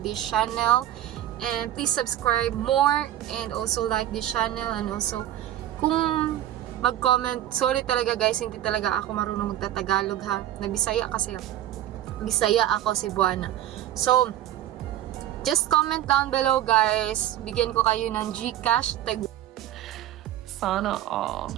this channel. And please subscribe more and also like this channel. And also, kung mag-comment, sorry talaga guys, hindi talaga ako marunong magtatagalog ha. Nagbisaya kasi Bisaya ako, Cebuana. So, just comment down below guys. Bigyan ko kayo ng GCash tag Sana all.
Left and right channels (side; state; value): left; quieter; 12.5 dB